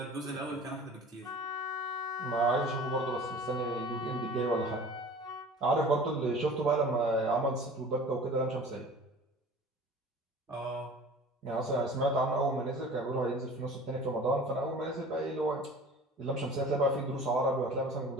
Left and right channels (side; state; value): both; normal; correlation 0.43